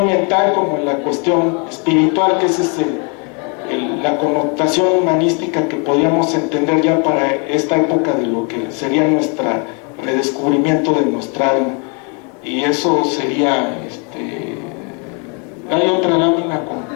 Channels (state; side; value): quieter; right; 35.9 dB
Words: mental como en la cuestión espiritual, que ese es la connotación humanística que podíamos entender ya para esta época de lo que sería nuestro redescubrimiento de nuestra alma. Y eso sería, ¿hay otra lámina